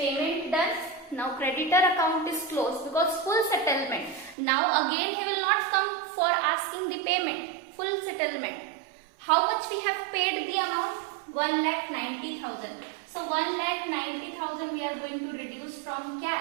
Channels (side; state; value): left; drops out; at 4.4 s